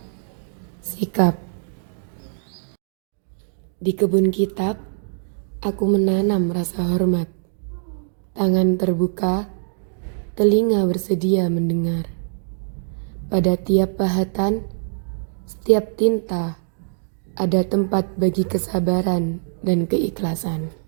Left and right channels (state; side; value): silent; left; digital silence